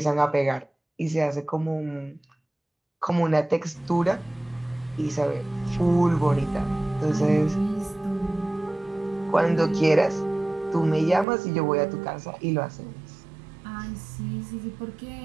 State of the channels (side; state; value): left; drops out; at 11.2 s